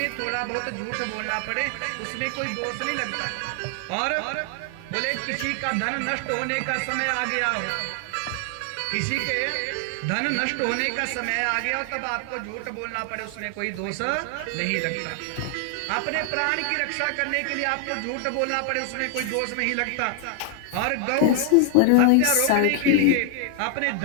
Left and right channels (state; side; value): different; both; correlation 0.00